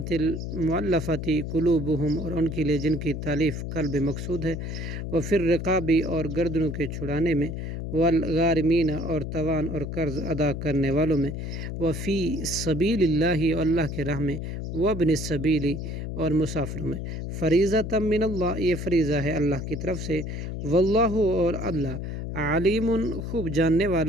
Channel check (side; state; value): left; noise; hum, 5 dB below the sound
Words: قلوبہم اور ان کے لیے جن کی تالیف قلب مقصود ہے، وفی الرقاب اور گردنوں کے چھڑانے میں، والغارمین اور توان اور قرض ادا کرنے والوں میں، وفی سبیل اللہ اور اللہ کے راہ میں، وابن السبیل اور مسافروں میں، فریضۃ من اللہ یہ فریضہ ہے اللہ کی طرف سے، واللہ اور اللہ علیم خوب جاننے